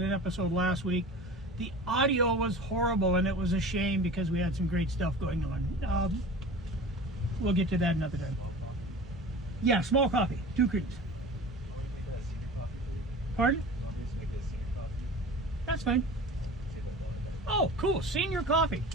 episode last week. The audio was horrible, and it was a shame because we had some great stuff going on. We'll get to that another time. Yeah, small coffee, 2 creams. Pardon? That's fine. Oh, cool, senior coffee.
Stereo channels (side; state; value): both; normal; correlation 0.37